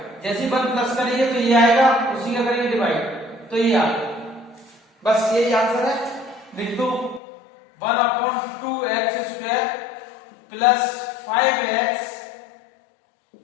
जैसे 1 प्लस करेंगे तो ये आएगा, उसी का करेंगे डिवाइड तो ये आएगा, बस यही आंसर है। लिख दो 1/2x² प्लस 5x,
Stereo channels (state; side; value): drops out; right; at 7.2 s